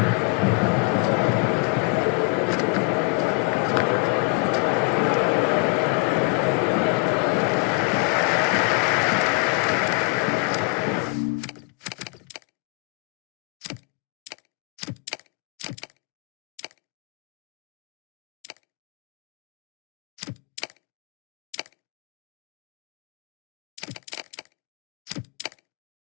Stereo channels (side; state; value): right; quieter; 31.8 dB